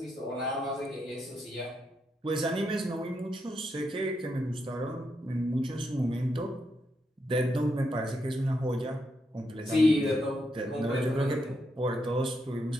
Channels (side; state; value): both; normal; correlation 0.81